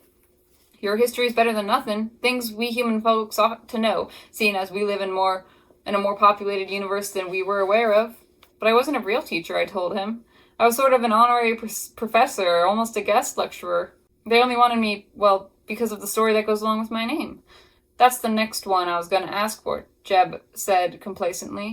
Your history is better than nothing. Things we human folks ought to know, seeing as we live in a more populated universe than we were aware of. But I wasn't a real teacher, I told him. I was sort of an honorary professor, almost a guest lecturer. They only wanted me, well, because of the story that goes along with my name. That's the next one I was going to ask for, Jeb said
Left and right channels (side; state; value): both; identical; correlation 1.00